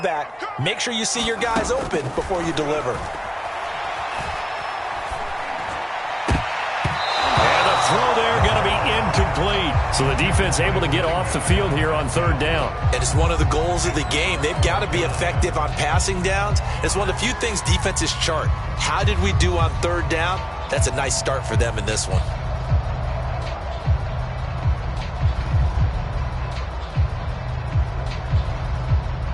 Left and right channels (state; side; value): identical; both; correlation 1.00